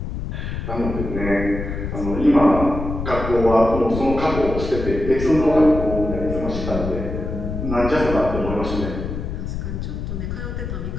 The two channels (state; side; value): noise; left; rumble, 5 dB below the sound